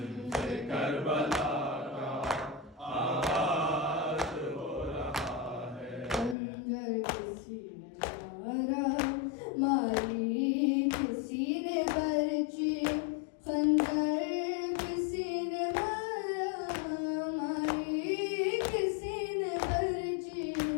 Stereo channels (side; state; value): right; drops out; at 6.4 s